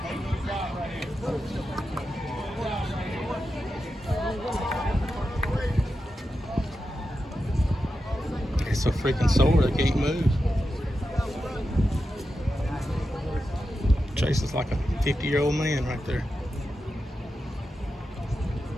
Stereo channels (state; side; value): normal; both; correlation 0.90